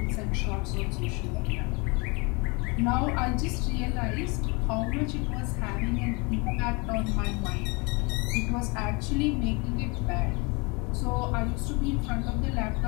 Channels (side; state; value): right; quieter; 29.2 dB